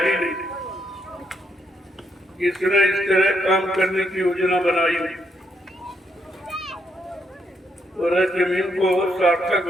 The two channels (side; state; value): both; normal; correlation 0.77